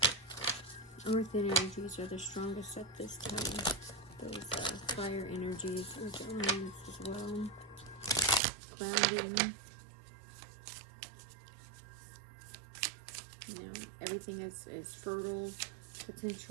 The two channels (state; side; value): drops out; left; at 8.4 s